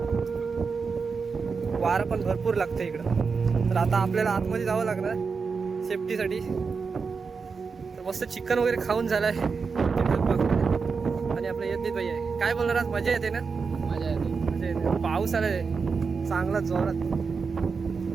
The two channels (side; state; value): left; quieter; 5.1 dB